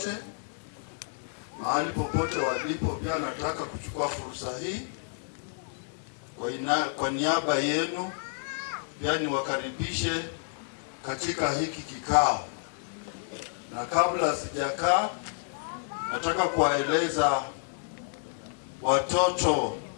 mahali popote walipo, pia nataka kuchukua fursa hii kwa niaba yenu pia niwakaribishe katika hiki kikao. Na kabla sijakaa, nataka kuwaeleza watoto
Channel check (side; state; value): right; silent; digital silence